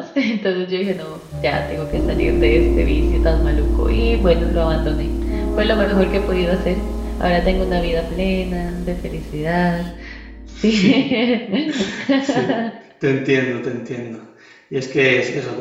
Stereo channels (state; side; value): identical; both; correlation 1.00